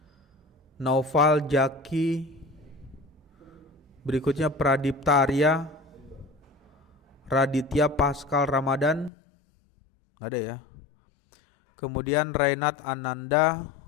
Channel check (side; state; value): right; drops out; at 9.1 s